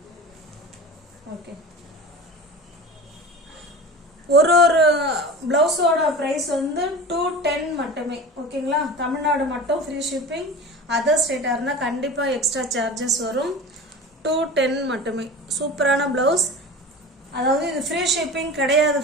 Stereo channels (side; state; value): both; normal; correlation 0.33